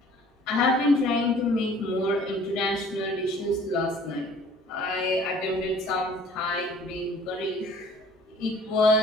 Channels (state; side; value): normal; both; correlation 0.52